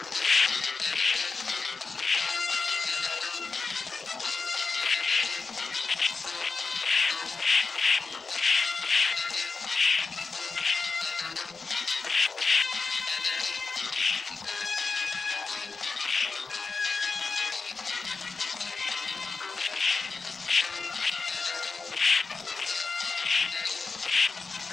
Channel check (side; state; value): right; quieter; 4.4 dB